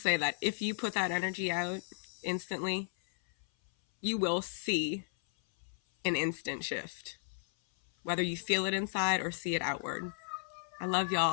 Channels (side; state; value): right; silent; 55 dB below the other